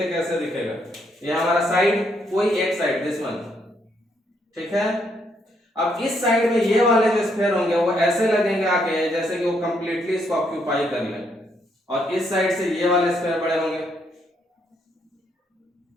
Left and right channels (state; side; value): normal; both; correlation 0.74